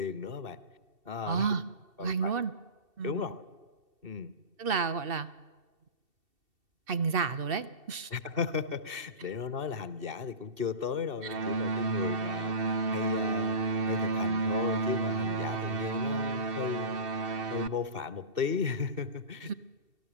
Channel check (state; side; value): late; left; 2.7 ms